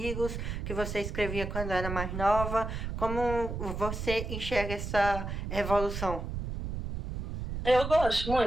que você escrevia quando era mais nova, como você enxerga essa evolução? Eu gosto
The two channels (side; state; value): right; noise; rumble, 5 dB below the sound